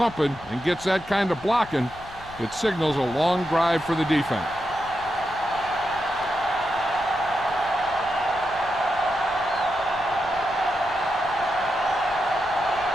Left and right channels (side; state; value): left; noise; rumble, 19 dB below the sound